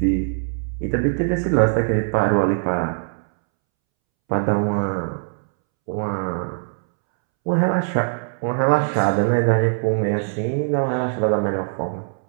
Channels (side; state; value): left; silent; 65 dB below the other